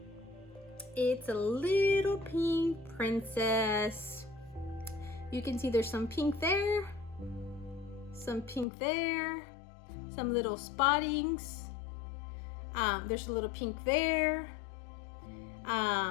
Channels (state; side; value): drops out; right; at 8.7 s